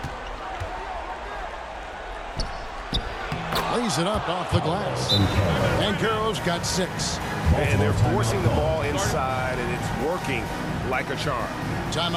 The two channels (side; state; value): both; identical; correlation 1.00